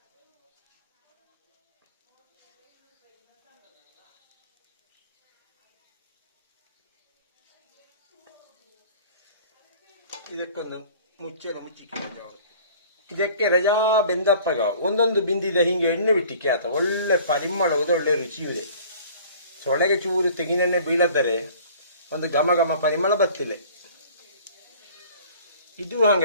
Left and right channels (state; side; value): inverted; both; correlation -0.48